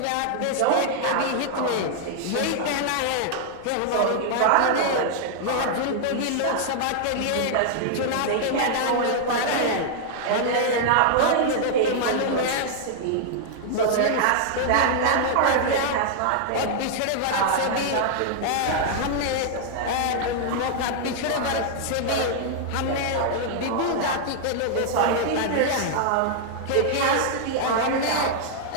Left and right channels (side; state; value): both; different; correlation -0.01